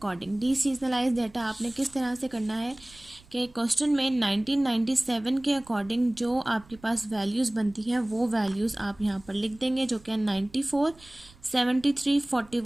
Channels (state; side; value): noise; right; rumble, 25 dB below the sound